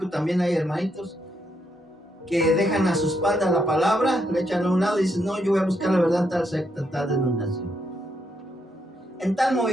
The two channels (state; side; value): normal; both; correlation 0.78